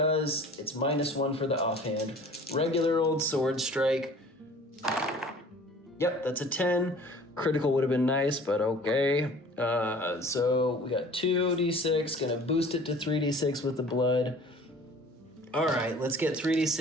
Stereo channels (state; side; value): normal; both; correlation 0.47